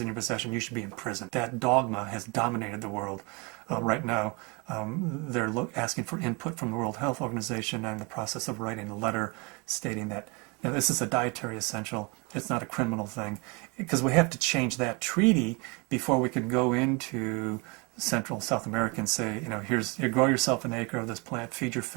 in your possession, you should be in prison. That dogma has dominated the world right now. They're asking for input from the World Health Organization, and in the process of writing a letter stating that this is a dietary essential, it's not a criminal thing, because we have to change that treaty before we can go into Central South America and say, you grow yourself an acre of this plant, feed your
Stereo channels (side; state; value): left; quieter; 29.9 dB